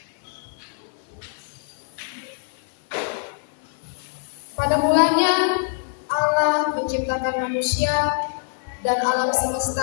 Pada mulanya Allah menciptakan manusia dan alam semesta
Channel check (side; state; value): right; silent; 57 dB below the other